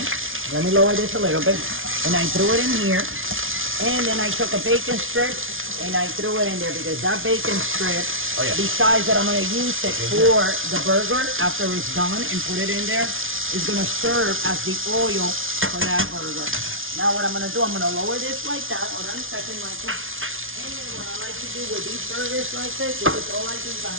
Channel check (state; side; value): late; left; 0.58 ms